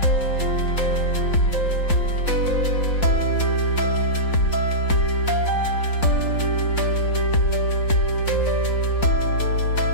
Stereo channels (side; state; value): right; late; 4.5 ms